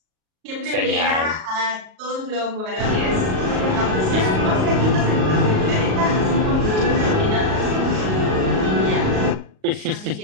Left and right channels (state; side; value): late; left; 38 ms